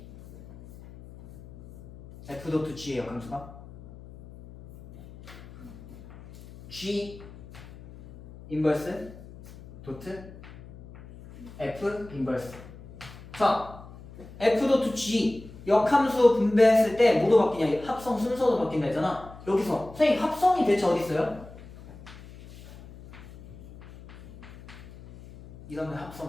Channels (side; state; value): left; noise; hum, 18 dB below the sound